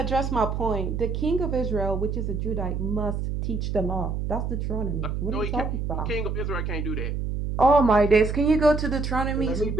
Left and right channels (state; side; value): noise; right; hum, 2 dB below the sound